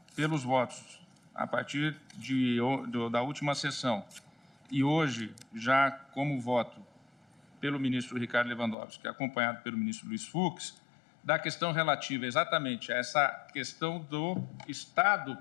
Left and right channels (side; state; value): right; drops out; at 8.8 s